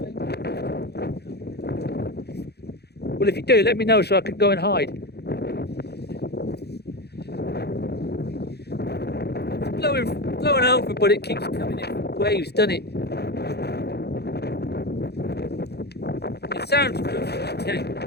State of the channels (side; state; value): right; late; 0.48 ms